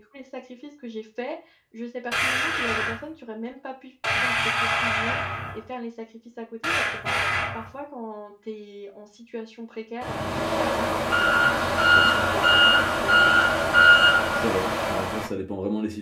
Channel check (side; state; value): both; identical; correlation 1.00